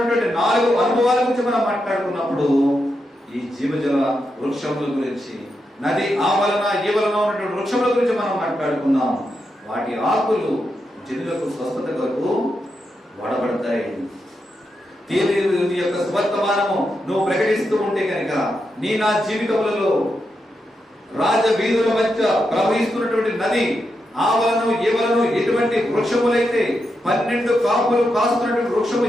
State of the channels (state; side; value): normal; both; correlation 0.85